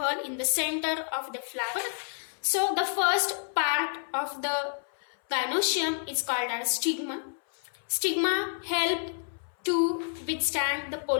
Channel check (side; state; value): right; silent; 58 dB below the other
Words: in the center of the flower. So the first part of the gynoecium is called as stigma. Stigma help to withstand the